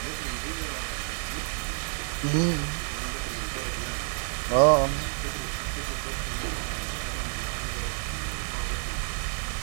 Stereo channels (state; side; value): silent; left; 58 dB below the other